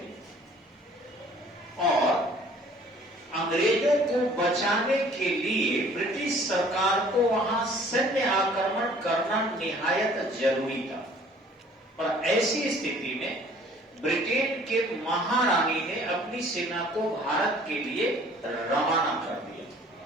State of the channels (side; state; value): both; normal; correlation 0.54